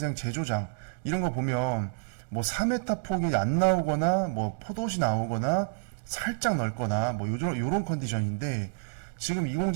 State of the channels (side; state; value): left; silent; digital silence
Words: 제조장 이런 거 보면 뭐 4m 폭이 안 나오거나 뭐 포도시 나오거나 살짝 넓거나 뭐 요런 컨디션인데 지금 이